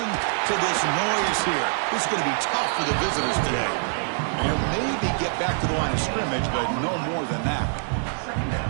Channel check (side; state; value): left; silent; 60 dB below the other